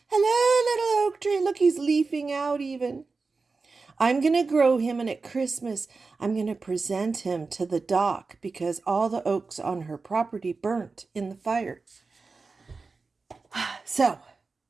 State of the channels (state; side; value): quieter; left; 4.2 dB